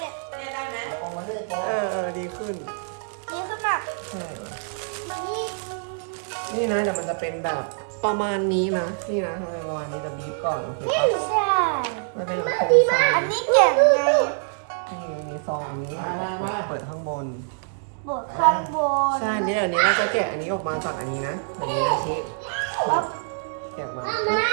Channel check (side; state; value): left; silent; digital silence